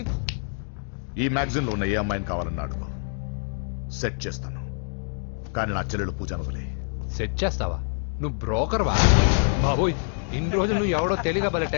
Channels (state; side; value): silent; right; digital silence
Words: ఈ మ్యాగజైన్ లో ఉన్న ఏ అమ్మాయిని కావాలన్నా అడుగు, సెట్ చేస్తాను. కానీ నా చెల్లెలు పూజను వదిలే. సెట్ చేస్తావా? నువ్వు బ్రోకర్ వా? బాబోయ్, ఇన్ని రోజులు నువ్వు ఎవడో తెలియక భలే